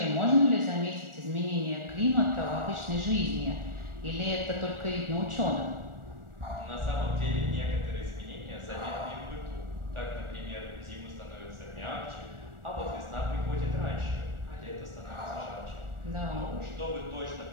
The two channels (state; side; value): late; left; 1.4 ms